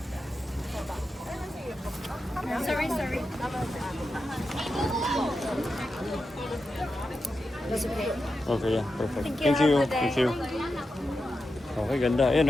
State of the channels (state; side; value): normal; both; correlation 0.89